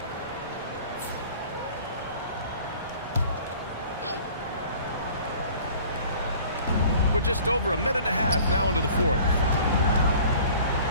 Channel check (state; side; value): inverted; both; correlation -0.49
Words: We're just over 1.5 minutes now into the fourth.